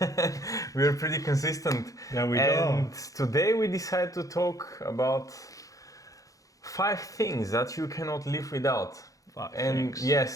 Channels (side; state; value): right; late; 0.17 ms